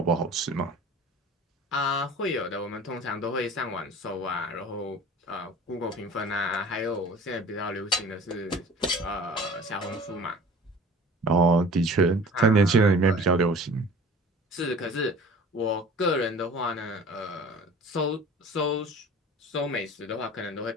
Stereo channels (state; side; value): normal; both; correlation 0.43